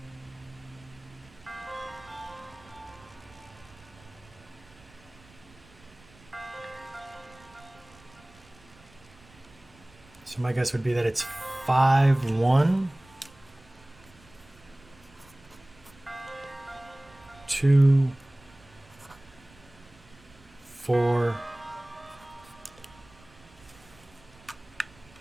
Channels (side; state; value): right; noise; rumble, 25 dB below the sound